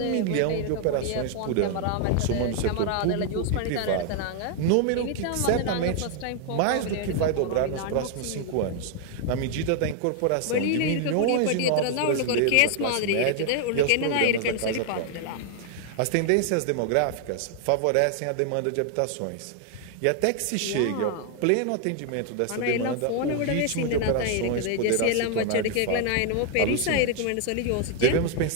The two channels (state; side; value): different; both; correlation 0.00